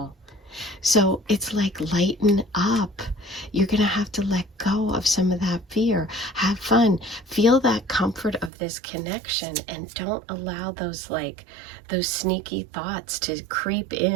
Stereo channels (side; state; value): left; drops out; at 8.5 s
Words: So it's like lighten up. You're going to have to let go of some of that fear. Have fun. Feel that comfort of this connection, and don't allow those sneaky thoughts to creep